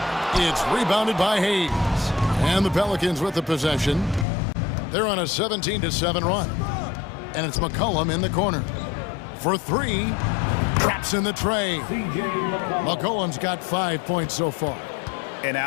It's rebounded by Hayes. And the Pelicans with the possession. They're on a 17-7 run. And it's McCollum in the corner. For three. Traps in the tray. McCollum's got 5 points so far. An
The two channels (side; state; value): right; drops out; at 4.2 s